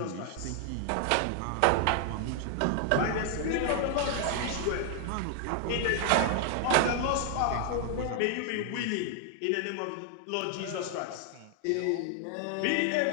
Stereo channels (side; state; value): both; different; correlation 0.00